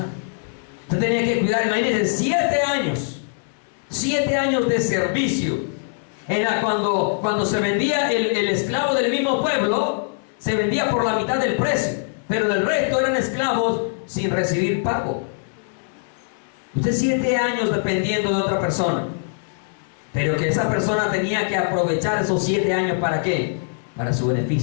Usted tenía que cuidar, imagínense, 7 años de servicio. Era cuando se vendía el esclavo del mismo pueblo, se vendía por la mitad del precio, pero el resto eran esclavos sin recibir pago. Usted 7 años dependiendo de otra persona, pero que esa persona tenía que aprovechar esos 7 años ¿para qué? Para su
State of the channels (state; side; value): silent; right; 59 dB below the other